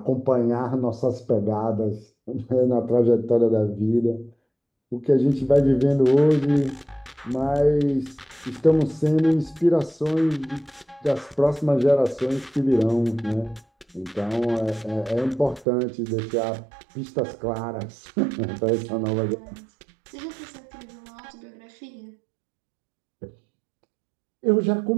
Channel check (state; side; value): drops out; left; at 15.7 s